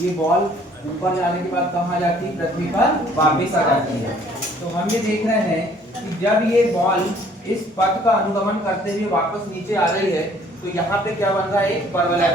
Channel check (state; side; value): normal; both; correlation 0.58